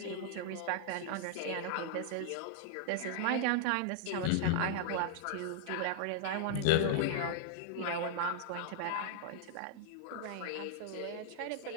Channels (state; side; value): different; both; correlation -0.01